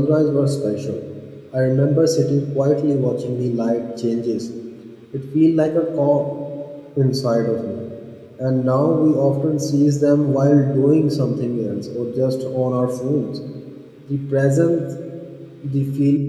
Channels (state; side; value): identical; both; correlation 1.00